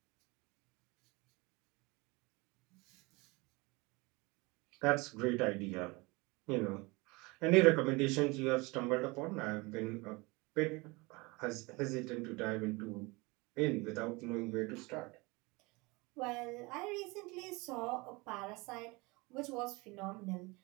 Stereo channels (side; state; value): left; quieter; 25.1 dB